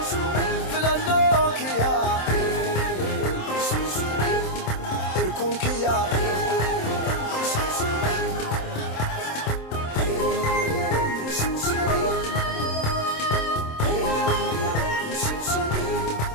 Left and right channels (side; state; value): right; late; 27 ms